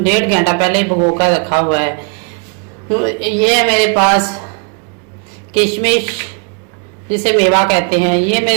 घंटा पहले भिगो कर रखा हुआ है। ये है मेरे पास किशमिश, जिसे मेवा कहते हैं। ये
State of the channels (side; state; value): left; quieter; 38.5 dB